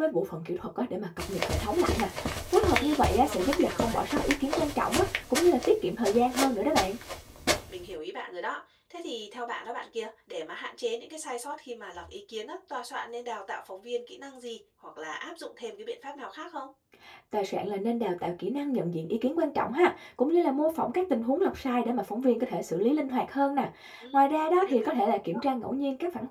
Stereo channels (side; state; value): both; identical; correlation 1.00